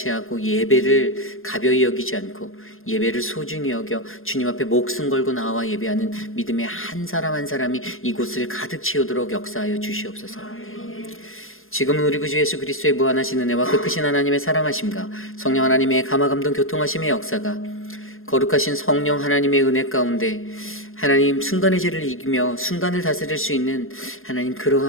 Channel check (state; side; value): late; right; 0.60 ms